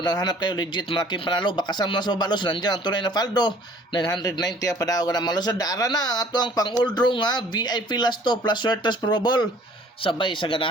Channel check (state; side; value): normal; both; correlation 0.54